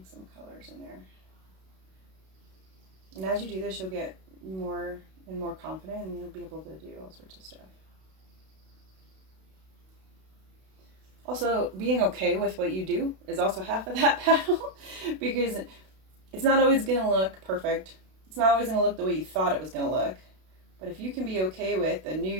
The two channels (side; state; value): left; late; 32 ms